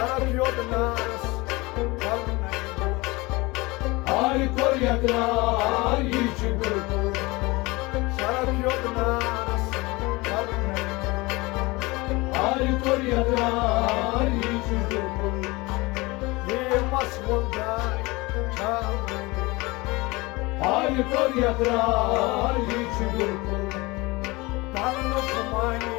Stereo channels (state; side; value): quieter; right; 23.3 dB